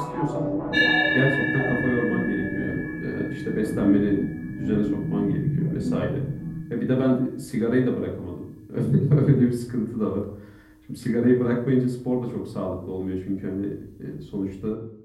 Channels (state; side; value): identical; both; correlation 1.00